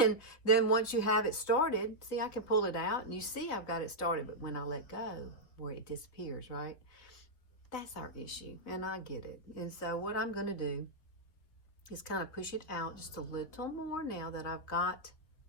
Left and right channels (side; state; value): right; late; 3.9 ms